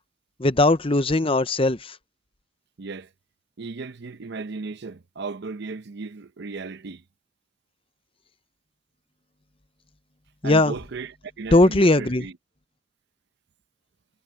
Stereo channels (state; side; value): normal; both; correlation 0.55